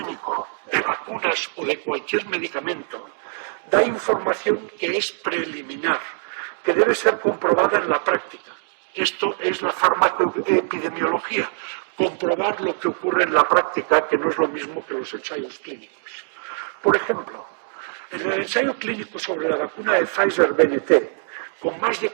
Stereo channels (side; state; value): left; silent; digital silence